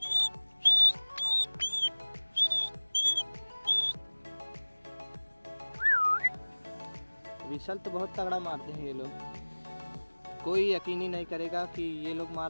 विसल तो बहुत तगड़ा मारते हैं ये लोग। कोई यकीन ही नहीं करेगा कि ये लोग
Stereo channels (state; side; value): inverted; both; correlation -1.00